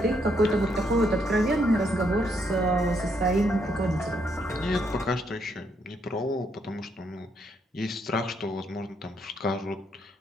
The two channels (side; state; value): both; normal; correlation 0.75